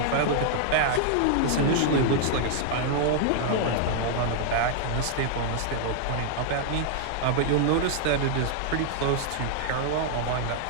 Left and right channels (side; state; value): both; different; correlation -0.01